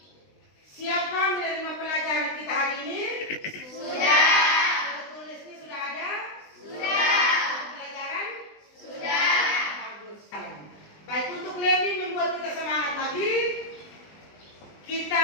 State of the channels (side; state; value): right; late; 20 ms